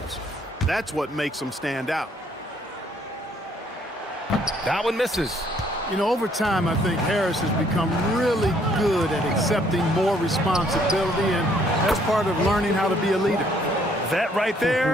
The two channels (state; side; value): normal; both; correlation 0.65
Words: That's what makes them stand out. That one misses. You know, over time, I think Harris has become really good at accepting more responsibility, and that's part of learning how to be a leader. That right